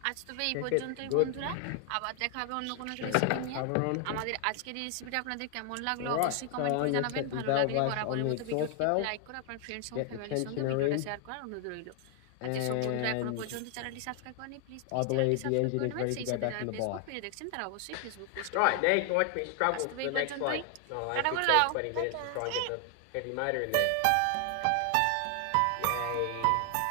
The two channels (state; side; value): different; both; correlation 0.00